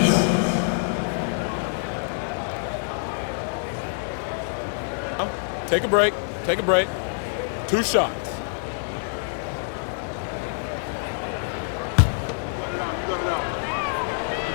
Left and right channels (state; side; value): silent; right; digital silence